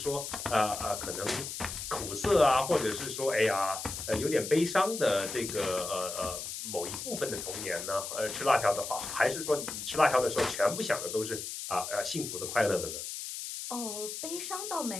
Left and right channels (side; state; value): left; noise; hiss, 7 dB below the sound